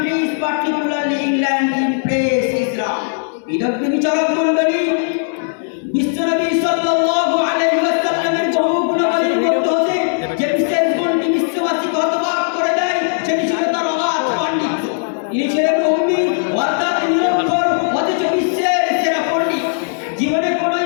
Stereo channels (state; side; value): silent; right; 63 dB below the other